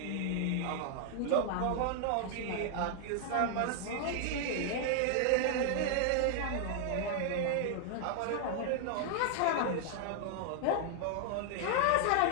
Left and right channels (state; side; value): different; both; correlation 0.00